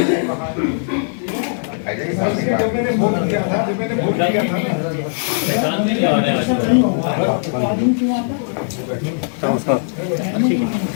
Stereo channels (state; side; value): silent; right; 59 dB below the other